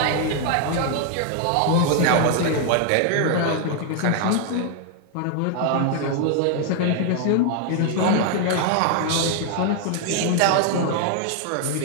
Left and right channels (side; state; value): both; different; correlation 0.00